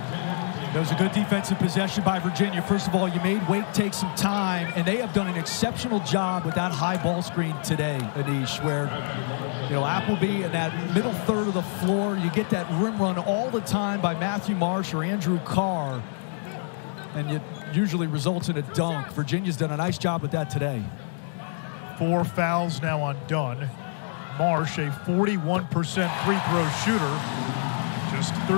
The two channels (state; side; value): silent; right; digital silence